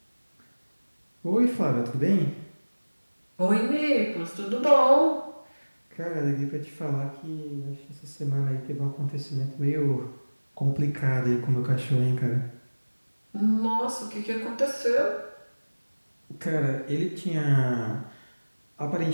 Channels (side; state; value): both; inverted; correlation -1.00